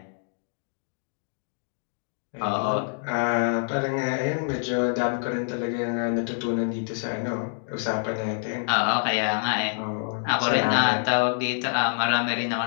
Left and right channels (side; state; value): right; silent; digital silence